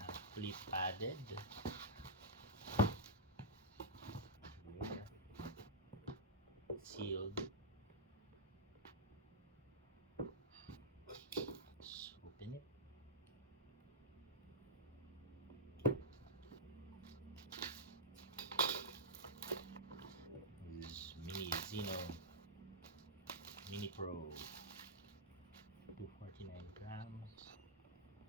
fully padded. Here, sealed. Let's open it. This is Mini Zino Mini Pro, 249 grams.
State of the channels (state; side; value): normal; both; correlation -0.10